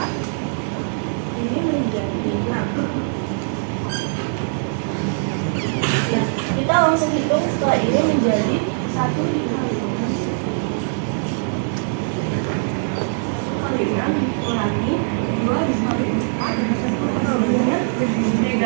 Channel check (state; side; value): silent; left; digital silence